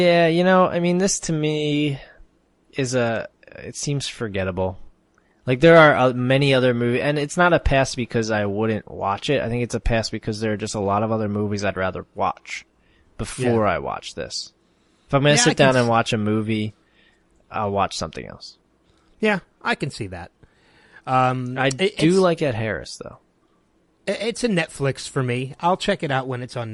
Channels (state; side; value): identical; both; correlation 1.00